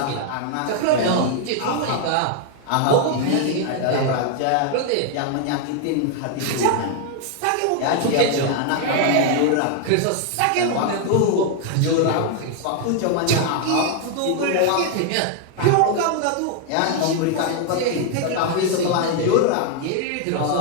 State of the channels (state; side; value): different; both; correlation 0.00